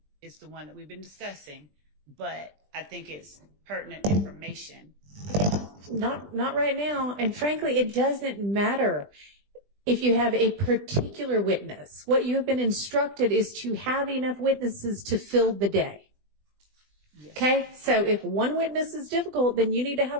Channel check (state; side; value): late; left; 20 ms